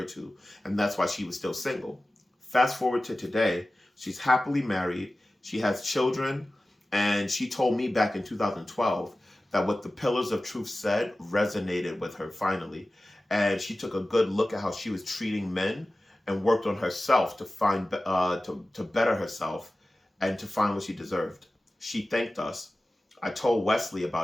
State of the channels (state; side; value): normal; both; correlation 0.96